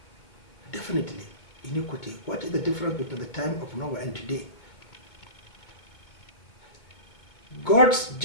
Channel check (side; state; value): right; late; 2.2 ms